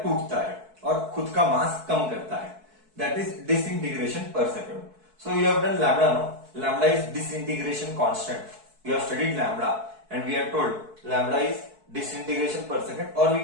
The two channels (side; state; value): left; late; 4.6 ms